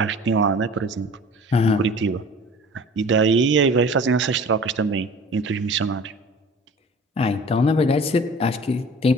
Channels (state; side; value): normal; both; correlation 0.44